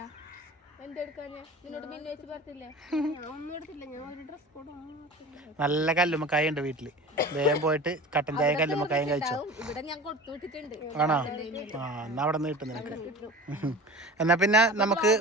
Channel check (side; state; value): both; normal; correlation 0.36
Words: നല്ല കല്ലുമ്മക്കായ ഉണ്ട് വീട്ടില്. വേഗം പോയിട്ട് കട്ടൻ ചായയും കല്ലുമ്മക്കായും കഴിച്ചോ. ആണോ? എന്നാ അവിടെ നിന്ന് കിട്ടും നിനക്ക്. എന്നാ പിന്നെ നമുക്ക്